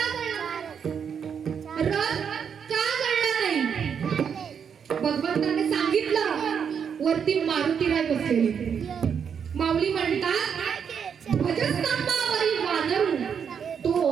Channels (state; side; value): quieter; left; 7.2 dB